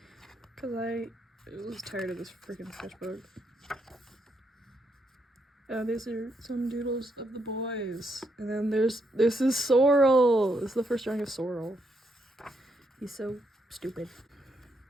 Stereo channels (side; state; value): both; normal; correlation 0.78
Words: I was tired of this freaking sketchbook. These are some doodles of the boys. And then this is Sorrel. This is the first drawing of Sorrel. He's so stupid.